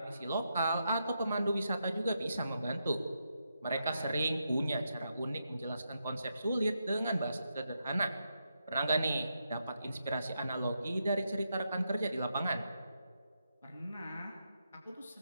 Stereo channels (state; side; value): inverted; both; correlation -0.84